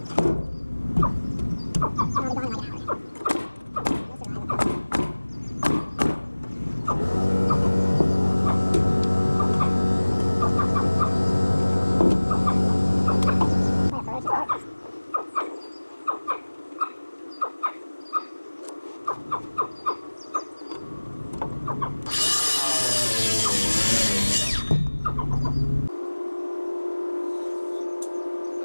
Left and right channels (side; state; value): both; inverted; correlation -1.00